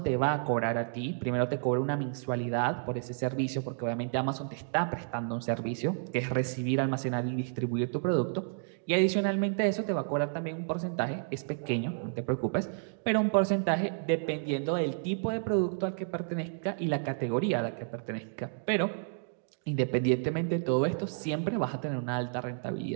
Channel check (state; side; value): silent; left; digital silence